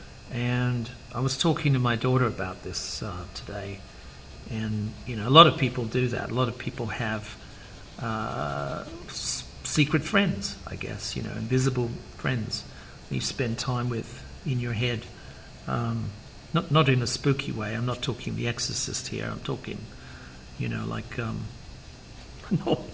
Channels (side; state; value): both; identical; correlation 1.00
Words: and I was talking to my daughter about this today. And a lot of people do that. A lot of people have secret friends, I guess, invisible friends you spend time with in your head. Not in a spooky way. I'm not talking The Exorcist here. I'm talking, like